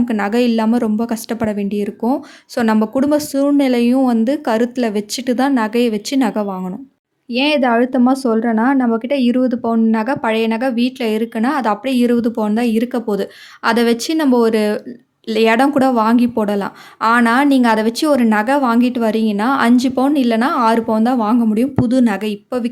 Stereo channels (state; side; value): identical; both; correlation 1.00